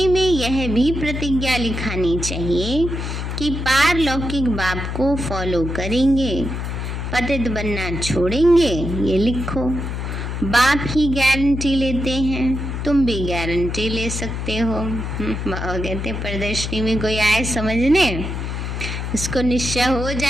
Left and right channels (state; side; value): noise; left; hum, 4 dB below the sound